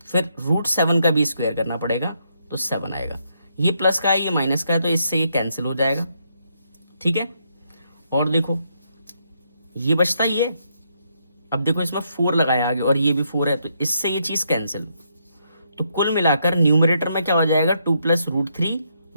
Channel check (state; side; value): inverted; both; correlation -0.77